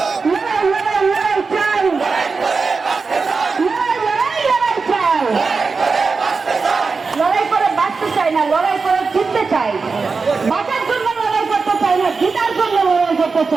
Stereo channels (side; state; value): left; quieter; 4.6 dB